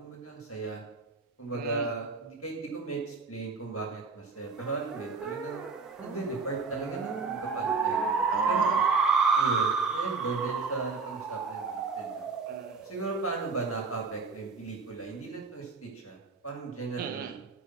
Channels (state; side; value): quieter; left; 4.5 dB